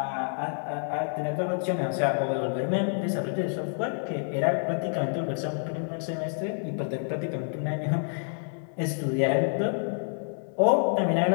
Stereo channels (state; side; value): silent; right; digital silence